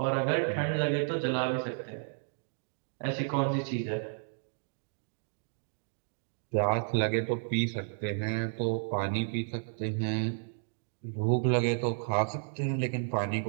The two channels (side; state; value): left; silent; digital silence